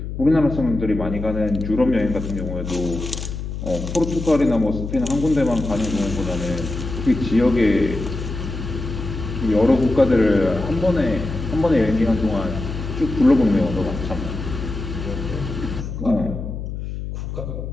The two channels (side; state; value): left; noise; hum, 6 dB below the sound